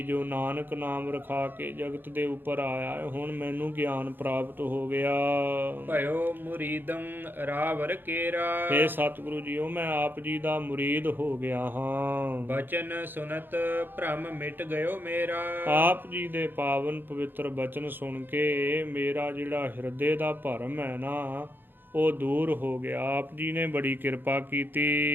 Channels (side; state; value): left; late; 0.097 ms